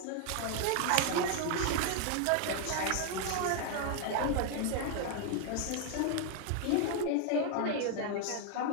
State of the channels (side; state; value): both; different; correlation 0.00